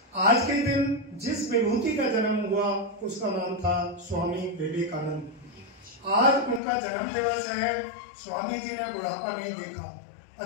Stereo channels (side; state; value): right; drops out; at 6.6 s